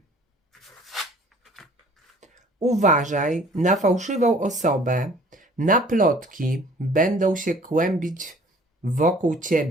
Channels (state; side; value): normal; both; correlation 0.52